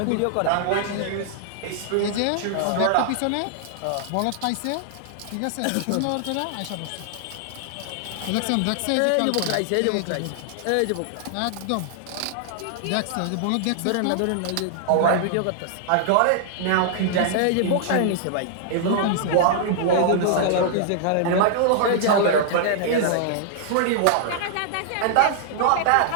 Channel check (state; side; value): different; both; correlation -0.01